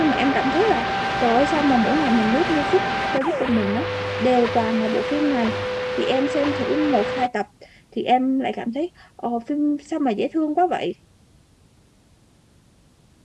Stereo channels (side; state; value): both; identical; correlation 1.00